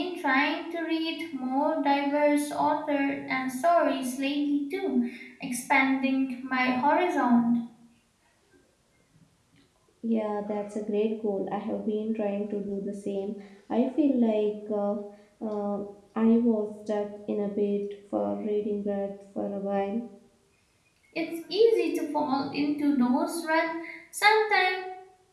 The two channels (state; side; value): identical; both; correlation 1.00